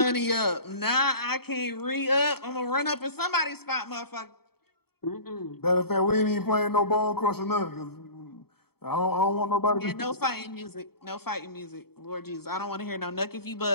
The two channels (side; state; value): right; late; 0.96 ms